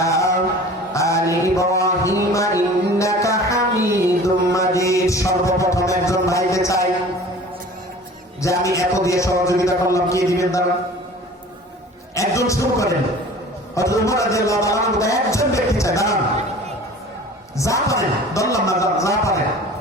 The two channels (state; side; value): normal; both; correlation 0.43